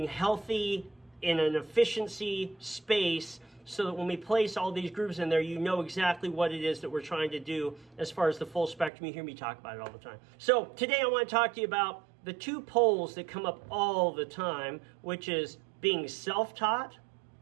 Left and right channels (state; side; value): drops out; left; at 8.9 s